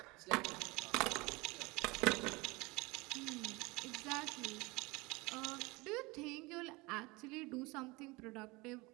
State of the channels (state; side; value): quieter; left; 24.3 dB